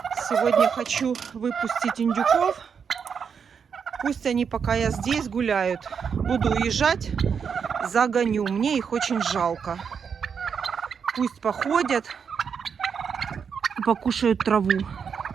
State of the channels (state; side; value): quieter; left; 6.6 dB